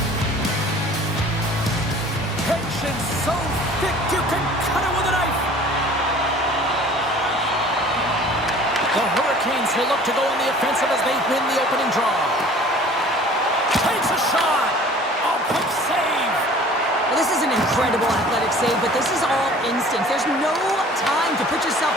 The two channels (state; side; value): normal; both; correlation 0.48